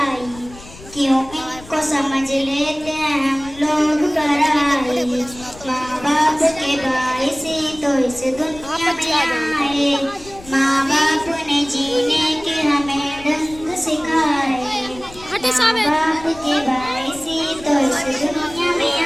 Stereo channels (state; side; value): noise; left; rumble, 19 dB below the sound